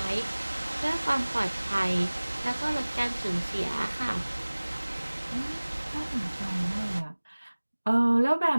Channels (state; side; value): inverted; both; correlation -1.00